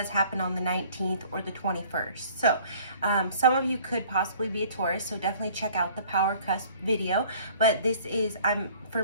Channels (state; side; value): inverted; both; correlation -0.53